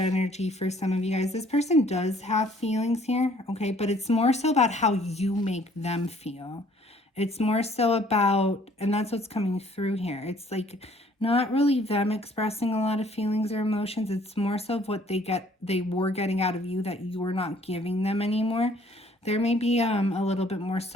for some of you guys. This person does have feelings here, okay? But it's more so about how you make them feel. It's more so about, and that's what's coming through here. It's like not really them expressing a lot of feelings or emotions. It's more so of what they were getting out of you that you're not giving them anymore. There may be a little bit more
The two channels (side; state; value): both; normal; correlation 0.59